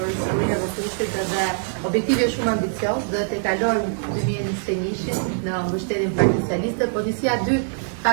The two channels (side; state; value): left; silent; digital silence